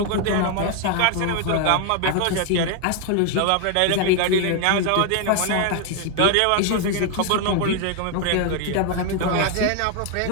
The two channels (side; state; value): both; different; correlation 0.00